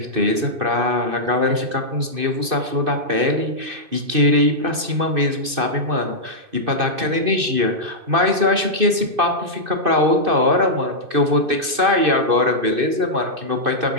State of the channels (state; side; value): late; left; 2.6 ms